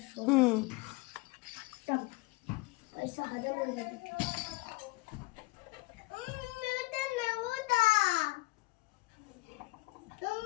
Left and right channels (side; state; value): right; quieter; 22.9 dB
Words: तब ऐसा हजम हो जाता।